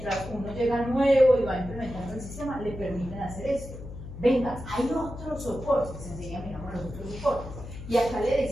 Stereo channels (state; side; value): noise; left; hum, 11 dB below the sound